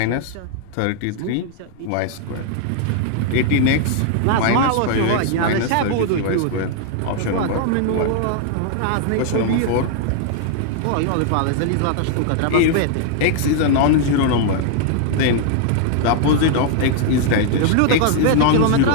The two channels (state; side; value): different; both; correlation 0.00